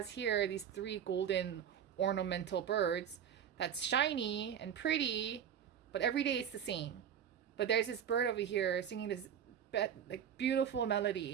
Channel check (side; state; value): left; quieter; 8.8 dB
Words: here these 3 golden ornamental birds that's shiny and pretty, but every day it's the same. But there's this bird over here singing this like beautiful